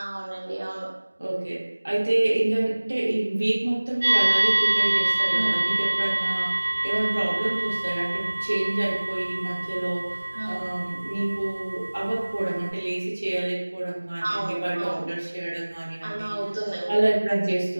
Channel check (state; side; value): inverted; both; correlation -1.00